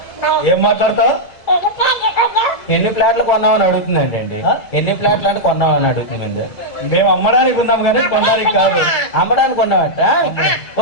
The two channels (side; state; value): right; late; 2.0 ms